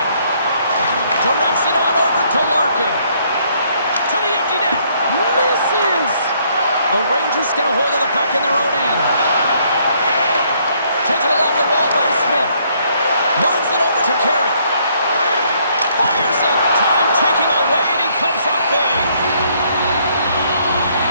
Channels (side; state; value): both; inverted; correlation -0.67